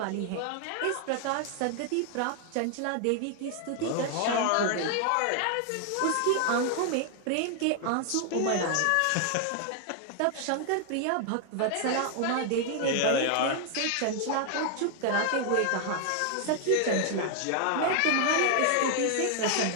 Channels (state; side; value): different; both; correlation 0.00